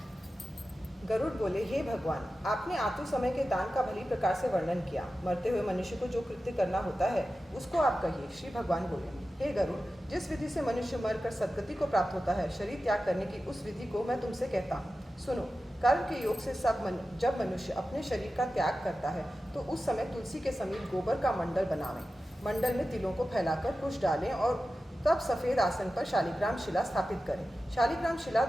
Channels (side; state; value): both; normal; correlation 0.93